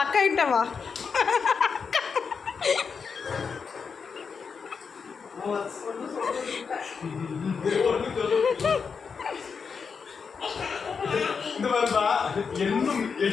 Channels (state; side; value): quieter; right; 5.7 dB